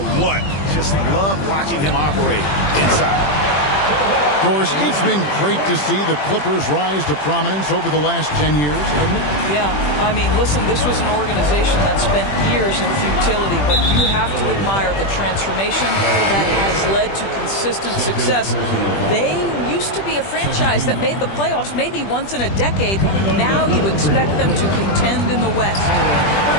what? Just love watching him operate inside. Of course, it's been great to see the Clippers rise to prominence over the last 10 years, hasn't it? Yeah, I mean, listen, this was an organization that spent years in futility, but you have to admire the transformation that has led to consistent success. They used to be a franchise that made the playoffs maybe once in a decade. Now you expect them to contend in the West.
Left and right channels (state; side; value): late; right; 20 ms